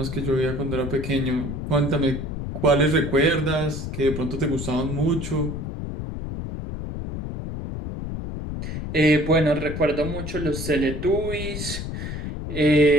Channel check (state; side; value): noise; left; rumble, 6 dB below the sound